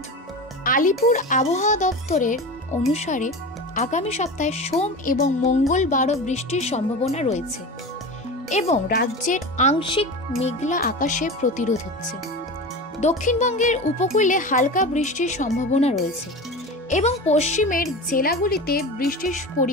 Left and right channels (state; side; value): normal; both; correlation 0.29